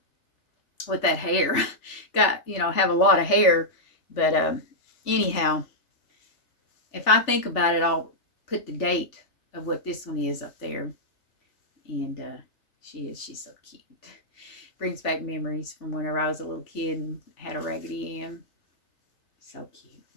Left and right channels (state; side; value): late; right; 3.4 ms